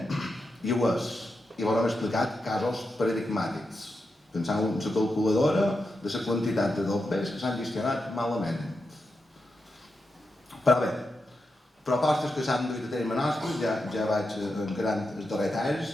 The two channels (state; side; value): normal; both; correlation 0.87